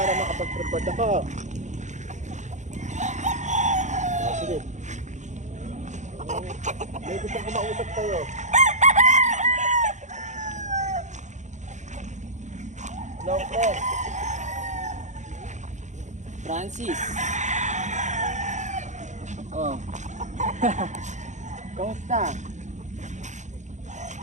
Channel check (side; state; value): left; late; 0.35 ms